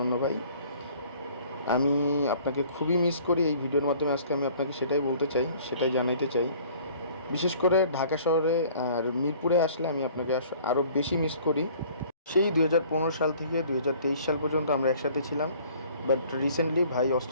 ভাই। আমি আপনাকে খুবই মিস করি। এই ভিডিওর মাধ্যমে আজকে আমি আপনাকে সেটাই বলতে চাই, সেটাই জানাইতে চাই। বিশেষ করে ঢাকা শহরে আর মিরপুরে আসলে আমি আপনাকে আরও বেশি মিস করি। সেই 2015 সাল থেকে 2023 সাল পর্যন্ত আমরা একসাথে ছিলাম, বাট রিসেন্টলি ভাই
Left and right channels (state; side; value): inverted; both; correlation -0.53